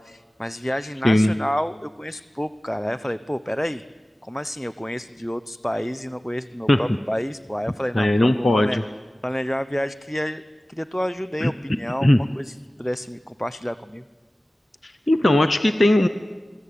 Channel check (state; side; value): normal; both; correlation 0.97